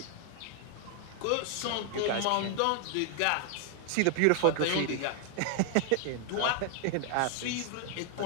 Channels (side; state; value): both; different; correlation 0.00